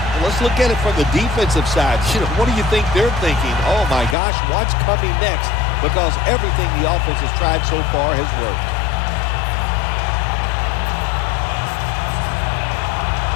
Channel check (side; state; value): right; drops out; at 4.2 s